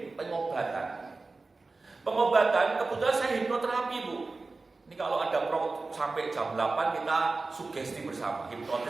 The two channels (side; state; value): left; quieter; 3.7 dB